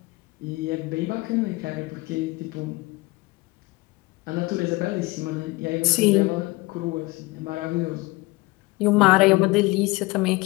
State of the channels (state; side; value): quieter; right; 22.5 dB